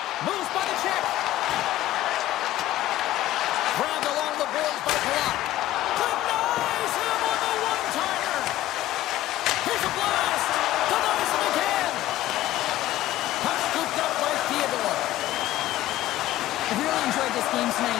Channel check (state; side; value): quieter; right; 14.7 dB